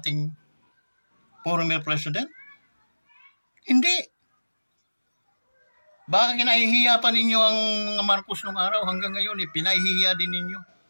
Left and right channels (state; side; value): inverted; both; correlation -1.00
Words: former president? Hindi. Baka kinahihiya pa ninyo ang mga Marcos nung araw, hanggang ngayon pinahihiya din ninyo.